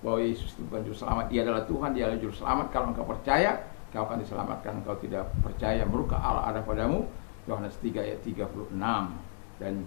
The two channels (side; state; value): right; silent; digital silence